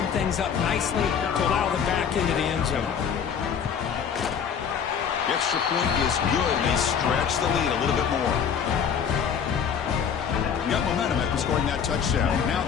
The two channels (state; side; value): quieter; right; 7.4 dB